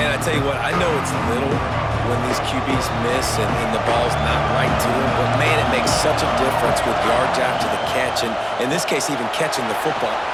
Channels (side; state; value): both; identical; correlation 1.00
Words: I tell you what, I know it's little when these QBs miss and the ball's not right to them, but man, it makes such a difference with yards after the catch, and in this case, even catching the football.